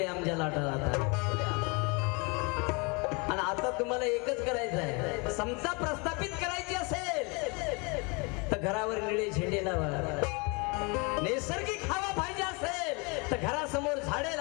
जला डाला था आणि आता तुम्हाला एकच करायचं आहे, समता प्रस्थापित करायची असेल तर घरावर निळे झेंडे लावा, नैसर्गिक हवा पाहिजे असेल तर घरासमोर झाडे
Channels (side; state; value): right; quieter; 30.6 dB